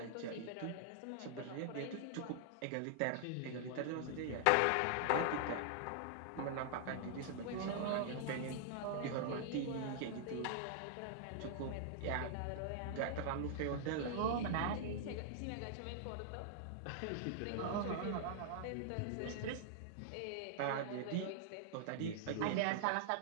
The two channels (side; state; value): both; different; correlation -0.01